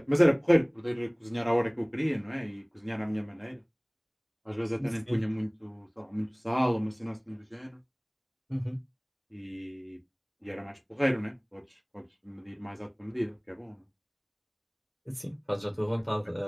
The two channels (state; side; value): identical; both; correlation 1.00